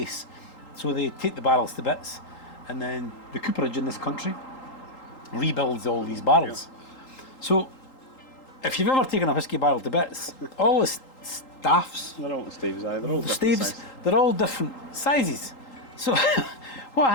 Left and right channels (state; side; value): late; right; 3.8 ms